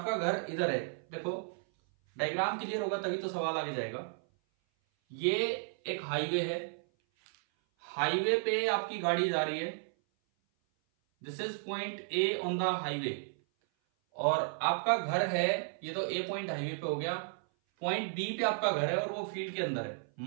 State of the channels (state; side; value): silent; left; 55 dB below the other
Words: घर इधर है। देखो डायग्राम क्लियर होगा तभी तो सवाल आगे जाएगा। ये एक हाईवे है, हाईवे पे आपकी गाड़ी जा रही है। This is point A on the highway, और आपका घर है, ये तो ए पॉइंट हाईवे पे हो गया। पॉइंट बी पे आपका घर है और वो फील्ड के अंदर है।